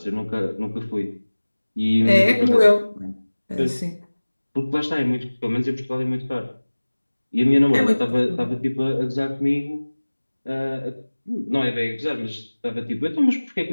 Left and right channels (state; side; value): inverted; both; correlation -1.00